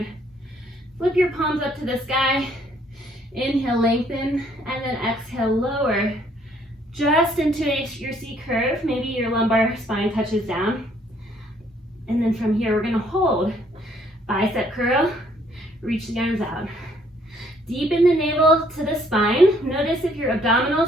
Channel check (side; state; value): both; normal; correlation 0.65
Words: Flip your palms up to the sky. Inhale, lengthen, and then exhale, lower. Just into your C curve. Maybe your lumbar spine touches down. And then from here, we're gonna hold. Bicep curl, reach the arms out. Deepen the navel to the spine. Notice if your